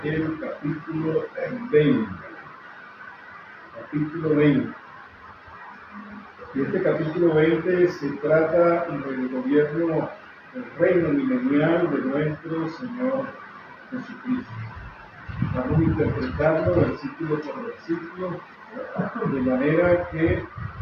el capítulo 20. Capítulo 20. Y este capítulo 20 se trata del gobierno del reino milenial de nuestro Señor Jesucristo. Vamos a interpretarlo versículo por versículo, de manera que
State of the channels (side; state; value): both; identical; correlation 1.00